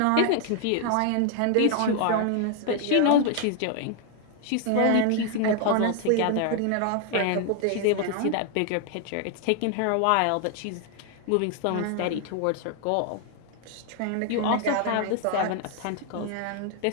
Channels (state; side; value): different; both; correlation 0.00